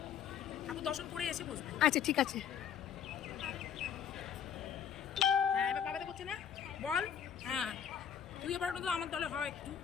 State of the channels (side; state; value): right; quieter; 8.3 dB